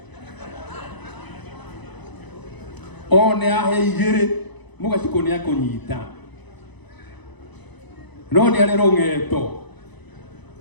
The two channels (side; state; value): right; late; 1.0 ms